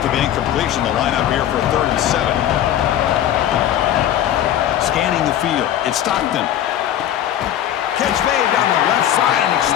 the incompletion, the lineup here for 3rd and 7. Scanning the field. It's Stockton. Catch made down the left side, an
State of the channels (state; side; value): quieter; right; 11.4 dB